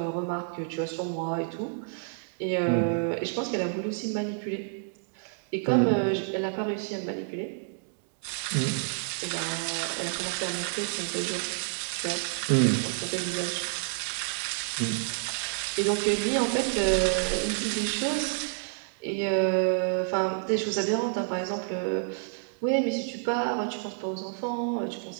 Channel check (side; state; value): left; silent; digital silence